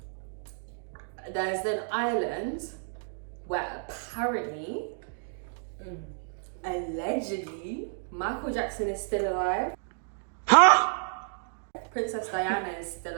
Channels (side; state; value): left; silent; digital silence